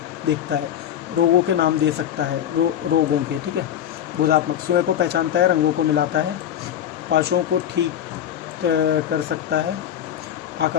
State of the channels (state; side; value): quieter; right; 10.2 dB